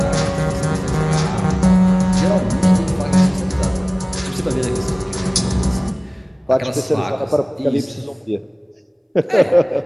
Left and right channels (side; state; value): both; identical; correlation 1.00